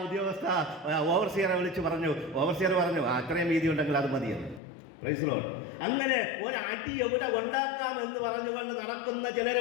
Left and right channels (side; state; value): right; drops out; at 4.6 s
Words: ഉദ്യോഗസ്ഥ ഓവർസിയറെ വിളിച്ച് പറഞ്ഞു. ഓവർസിയർ പറഞ്ഞു, അത്രയും വീതി ഉണ്ടെങ്കിൽ അത് മതിയെന്ന്. Price the Lord. അങ്ങനെ ഒരടി എവിടെ ഉണ്ടാക്കാം എന്ന് പറഞ്ഞുകൊണ്ട് നടക്കുന്ന